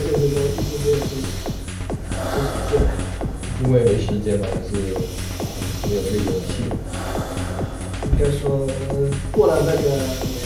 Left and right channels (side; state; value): both; identical; correlation 1.00